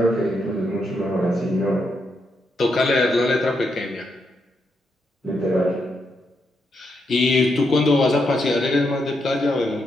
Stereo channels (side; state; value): both; normal; correlation 0.81